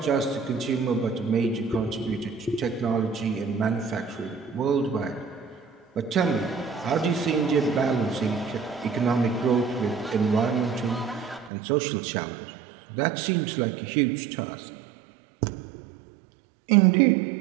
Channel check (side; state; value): left; drops out; at 11.5 s